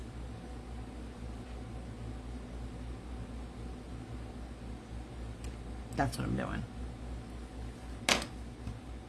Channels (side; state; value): both; identical; correlation 1.00